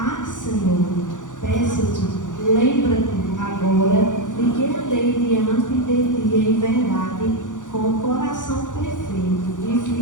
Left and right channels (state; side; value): late; right; 0.87 ms